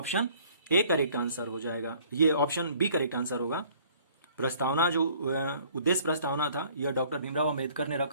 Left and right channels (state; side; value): inverted; both; correlation -0.56